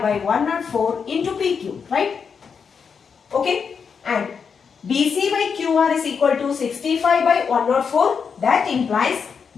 by 104 into PQ, right? Okay. And BC by QR is equal to 65 by 104. That implies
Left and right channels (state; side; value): quieter; right; 6.2 dB